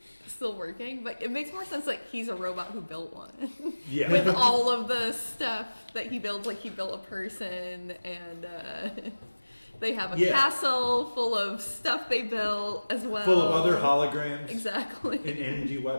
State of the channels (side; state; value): both; inverted; correlation -1.00